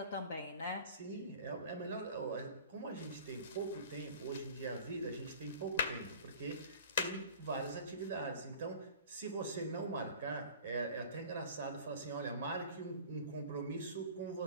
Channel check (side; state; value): both; inverted; correlation -0.43